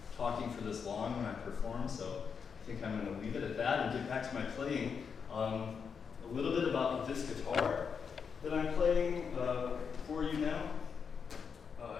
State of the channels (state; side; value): quieter; right; 6.3 dB